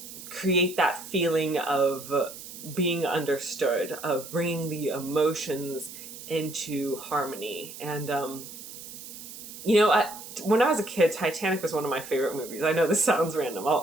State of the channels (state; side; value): noise; right; hiss, 13 dB below the sound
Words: create that feeling of being understood, of bringing the emotions into harmony. And, when I was a kid, Titanic was one of my favorite movies. I know this sounds random.